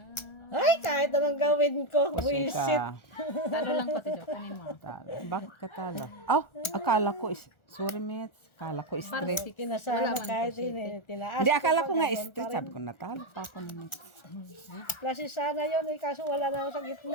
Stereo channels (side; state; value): right; late; 1.4 ms